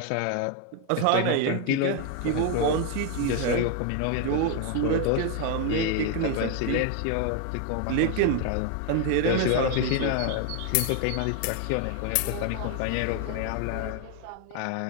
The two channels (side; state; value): both; different; correlation 0.01